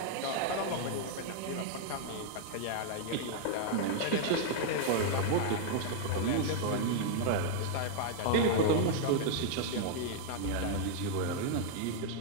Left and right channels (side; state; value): both; different; correlation 0.00